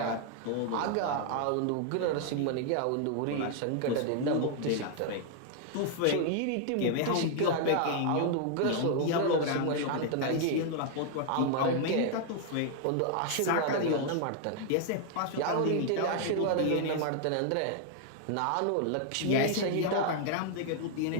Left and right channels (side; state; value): both; different; correlation 0.00